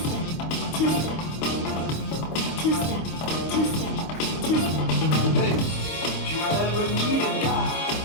two-step, two-step, two-step, two-step. Hey, if you ever need a guy,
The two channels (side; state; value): right; late; 25 ms